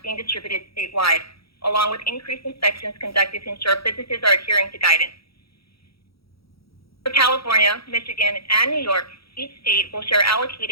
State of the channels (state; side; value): late; right; 0.76 ms